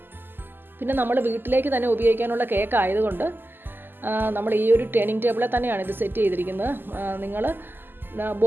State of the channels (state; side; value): late; left; 0.094 ms